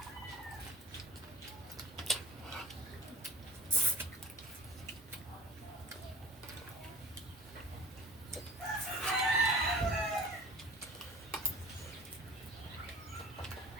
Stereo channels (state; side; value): normal; both; correlation 0.40